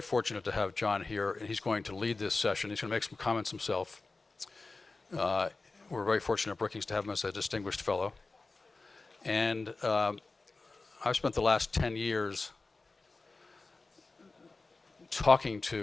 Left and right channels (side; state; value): right; quieter; 3.7 dB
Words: fortunate to have John here, and he's going to lead this session. He's going to make some comments himself. We're very fortunate at Brookings to have him as a distinguished fellow. And I've spent the last 10 years talking